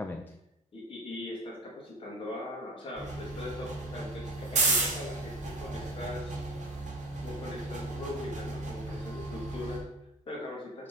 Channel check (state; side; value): normal; both; correlation 0.36